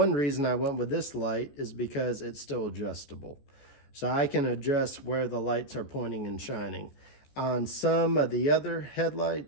reason I went with this light is because it's still adjustable. So I can adjust where the lights are pointing and shining. On some of the other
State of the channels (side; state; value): right; late; 14 ms